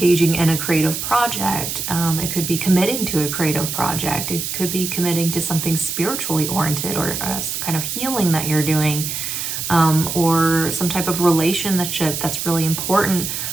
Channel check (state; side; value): noise; right; hiss, 4 dB below the sound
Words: in a creative project. It could be committing to a creative project. It could be committing to something spiritually oriented, or some kind of healing that you're doing, or some type of relationship that's really important